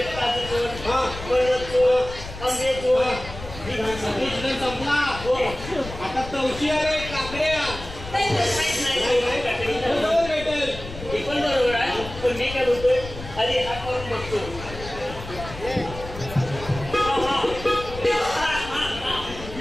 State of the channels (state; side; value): noise; left; rumble, 12 dB below the sound